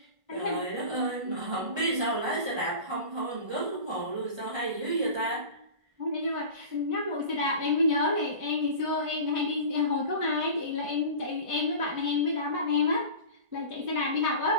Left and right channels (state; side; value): late; left; 1.5 ms